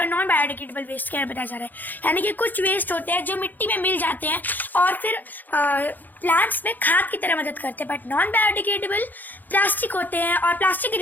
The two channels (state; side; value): late; right; 0.085 ms